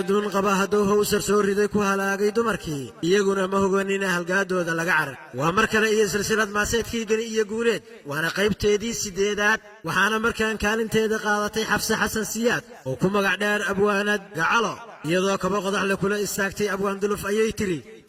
dun qaba hadduu hawsar soo riday ku halaagay dumarkii iyaguna ma hogaanina halgaadooda laga carar waa mar kale iyo silsilad maaseedkii gani iyo guuleed waana qaybteedii 8aad waxaana markaan kaalinteeda qaadatay xafsa xasan siyaad oo ku magac dheer abwaanad gacalo iyadoo kaba qodax la kula istaagtay abwaan duluf ayay tiri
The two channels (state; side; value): identical; both; correlation 1.00